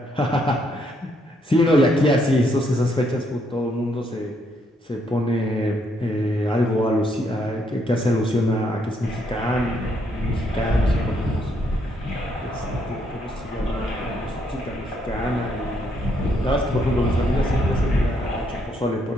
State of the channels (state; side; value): normal; both; correlation 0.73